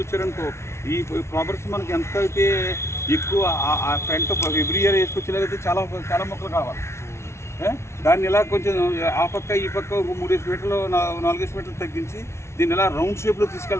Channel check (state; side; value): late; right; 0.13 ms